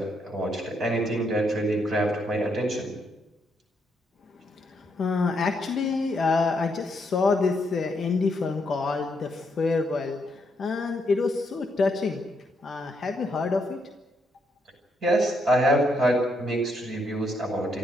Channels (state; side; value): normal; both; correlation 0.77